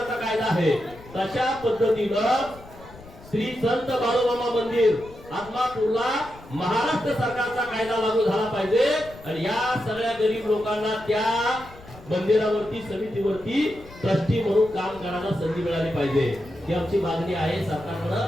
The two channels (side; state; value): left; noise; rumble, 20 dB below the sound